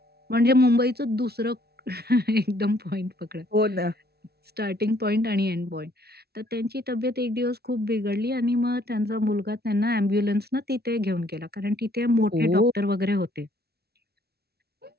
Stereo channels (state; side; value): late; left; 0.46 ms